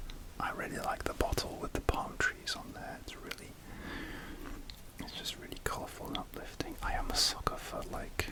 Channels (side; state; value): both; identical; correlation 1.00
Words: I really like the bottle with the palm trees on there. It's just really colourful and uplifting. I am a sucker for like